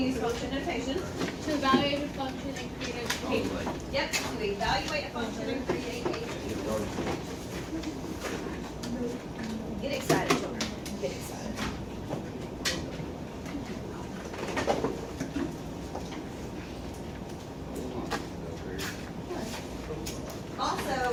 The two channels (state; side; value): identical; both; correlation 1.00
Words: function notation. to evaluate a function and create a Oh, table. like, Yep, to evaluate a function and create a table. Get excited, children. Get excited. Also,